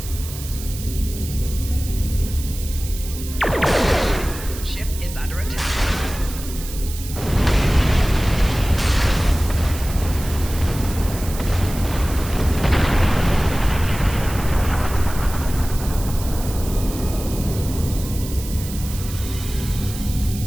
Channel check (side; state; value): right; noise; hiss, 12 dB below the sound